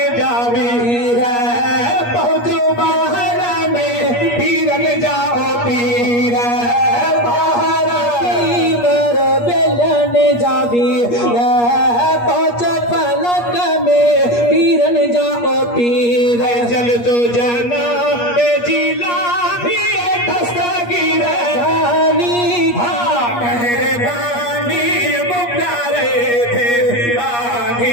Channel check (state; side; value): late; right; 8.4 ms